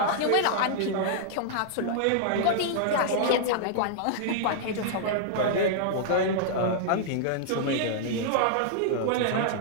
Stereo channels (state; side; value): different; both; correlation -0.01